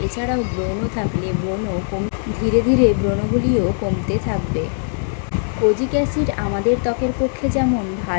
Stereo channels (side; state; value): right; silent; 66 dB below the other